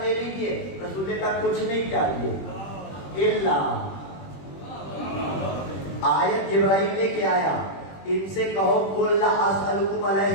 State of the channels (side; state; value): right; late; 21 ms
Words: لے لیجیے. رسول نے کہا کچھ نہیں چاہیے الا، آیت جبرائیل لے کے آیا، ان سے کہو قل لا اسألکم